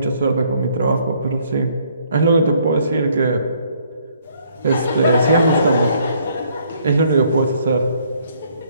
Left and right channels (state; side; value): inverted; both; correlation -0.65